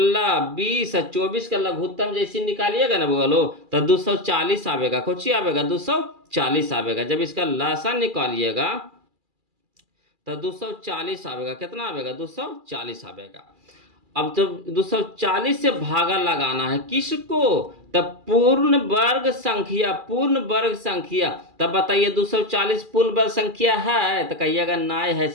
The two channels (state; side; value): late; left; 2.4 ms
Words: 20 और 24 का लघुत्तम जैसी निकालिएगा ना बगलो, तो 240 आवेगा। कौची आवेगा? 240 आवेगा। जब इसका लसन निकालिएगा तो 240 आवेगा। कितना आवेगा? 240 आवेगा। अब जब 240 से भागा लगाना है किसको? तब पूर्ण वर्ग संख्या, पूर्ण वर्ग संख्या। तब बताइए 240 पूर्ण वर्ग संख्या है? तो कहिएगा नहीं है